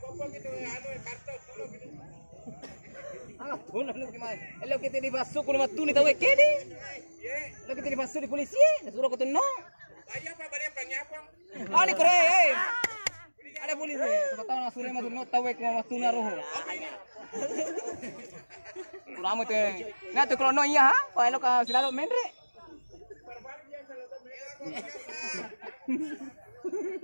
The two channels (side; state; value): both; inverted; correlation -1.00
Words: gitu anu kartu dulu gitu. Tuh lu gimana? Lo kita dibasuh ke rumah tuh nih tahu kede. Lo kita dibasuh di polisi, suruh ke tuno. Ayo apa balik pengyapang. Ah ni kore, ada polisi. Siapa tahu suruh masuk not tahu ke rumah tuh naruh. Kurang itu. Nah tuh kalau no iya, wah lo ka selalu mendre.